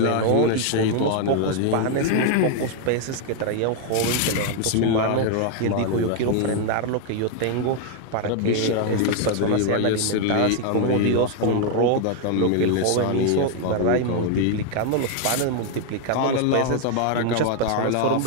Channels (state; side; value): different; both; correlation 0.00